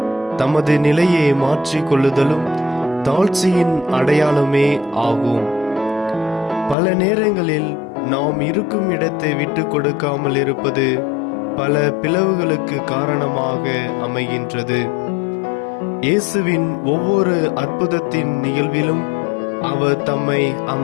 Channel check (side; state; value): right; drops out; at 6.8 s